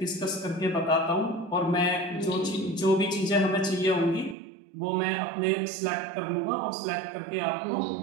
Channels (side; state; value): left; drops out; at 4.4 s